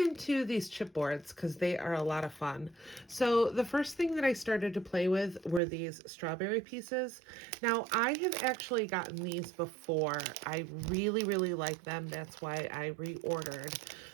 these chipboards because they are a lot of fun. So the first thing that I started to play with were these strawberry pieces. Now I have actually gotten these before. I really, really like them. That's why I reordered.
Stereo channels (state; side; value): drops out; left; at 5.6 s